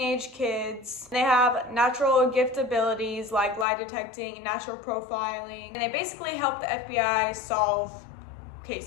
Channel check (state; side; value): drops out; right; at 3.7 s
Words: kids. They have natural gift abilities like lie detecting, natural profiling, and they basically help the FBI solve